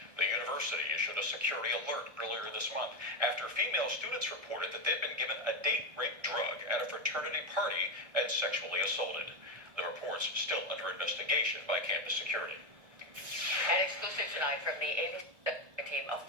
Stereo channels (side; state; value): left; late; 1.6 ms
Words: The university issued a security alert earlier this month after female students reported that they'd been given a date rape drug at a fraternity party and sexually assaulted. The report's still under investigation by campus security. An exclusive tonight from the ABC team, a